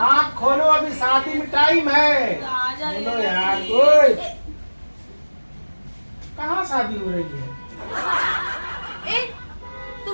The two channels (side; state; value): both; inverted; correlation -1.00